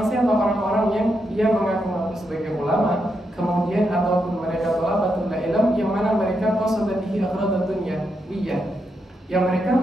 siapa? Orang-orang yang dia mengaku-ngaku sebagai ulama, kemudian ataupun mereka thalabatul ilm yang mana mereka qasada bihi aghradan dunyawiyah, yang mereka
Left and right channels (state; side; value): normal; both; correlation 0.83